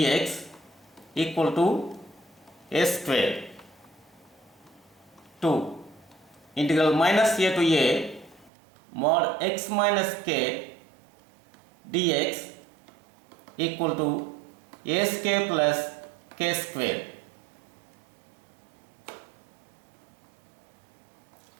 equal to a square. 2, integral minus a to a mod x minus k dx equal to a square plus k square.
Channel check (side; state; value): left; drops out; at 8.5 s